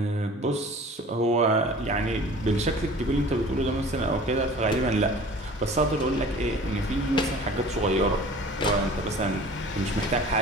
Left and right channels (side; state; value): both; normal; correlation 0.44